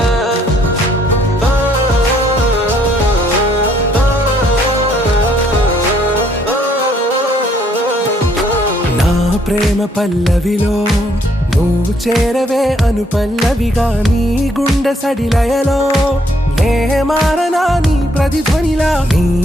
ప్రేమ పల్లవిలో నువ్వు చేరవే అను పల్లవిగా నీ గుండె సడిలయలో నే మారనా నీ ప్రతిధ్వనిలా నీ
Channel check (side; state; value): both; normal; correlation 0.67